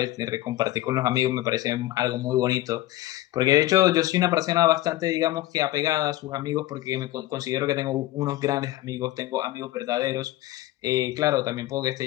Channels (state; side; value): quieter; right; 16.3 dB